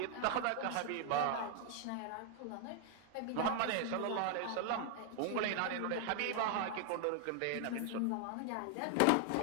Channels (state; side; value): different; both; correlation 0.00